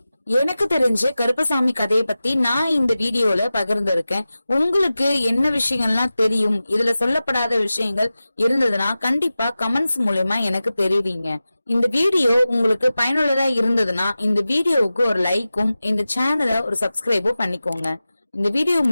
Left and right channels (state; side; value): inverted; both; correlation -0.95